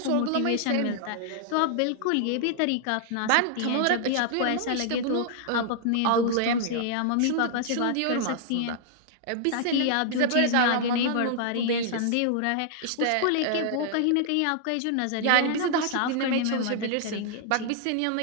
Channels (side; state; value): both; different; correlation -0.01